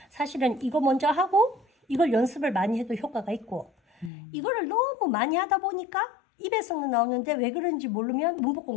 사실은 이거 먼저 하고 이걸 연습을 많이 해도 효과가 있고 이거를 너무 많이 하다 보니까 입에서는 나오는데 왜 그런지 모르면 문법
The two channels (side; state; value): right; drops out; at 4.1 s